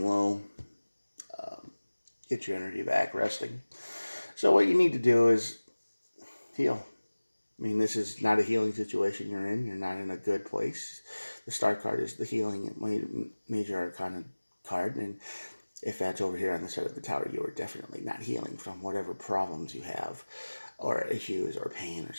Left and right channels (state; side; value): inverted; both; correlation -1.00